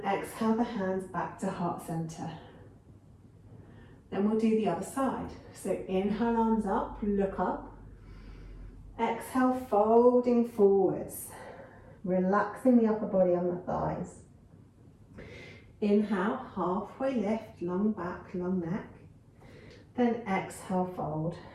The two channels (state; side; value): identical; both; correlation 1.00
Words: exhale the hands back to heart center. Then we'll do the other side. So inhale, arms up, look up. Exhale, folding forwards. Relaxing the upper body on the thighs. Inhale, halfway lift, long back, long neck. Then exhale, fold.